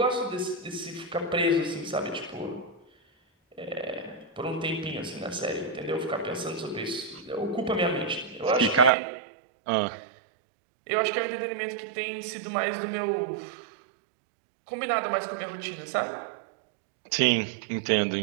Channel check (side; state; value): left; drops out; at 8.9 s